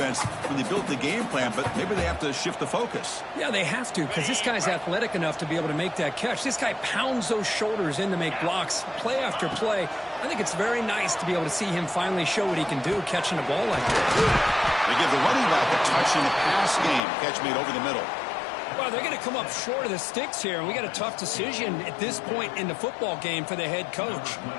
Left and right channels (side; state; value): right; drops out; at 17.0 s